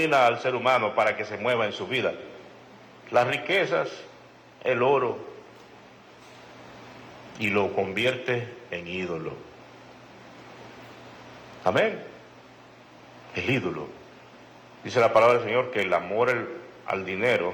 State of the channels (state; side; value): identical; both; correlation 1.00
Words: al ser humano para que se mueva en su vida? Las riquezas, el oro, y lo convierte en ídolo. Amén. El ídolo. Dice la palabra del Señor que el amor al dinero,